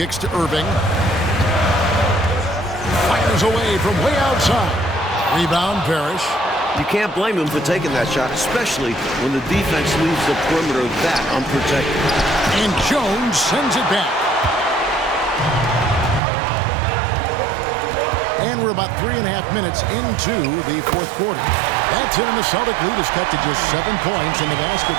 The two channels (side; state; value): left; drops out; at 16.2 s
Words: to Irving. Fires away from way outside. Rebound, Parrish. You can't blame him for taking that shot, especially when the defense leaves the perimeter that unprotected. And Jones sends it back. And we're about 3.5 minutes into the fourth quarter. That's it, and the Celtic lead is cut to just 7 points in the basket